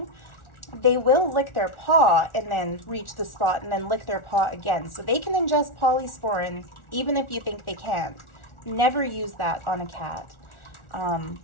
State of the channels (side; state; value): right; late; 1.4 ms